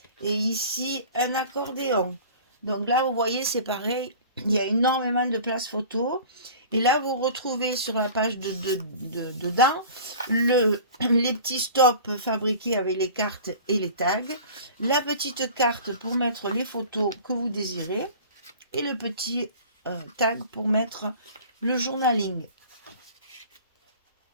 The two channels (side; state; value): both; inverted; correlation -0.41